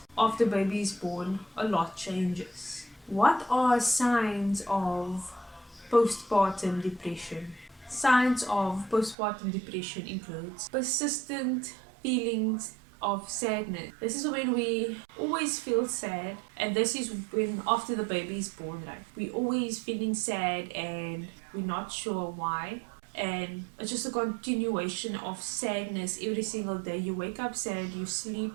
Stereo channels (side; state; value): left; drops out; at 9.2 s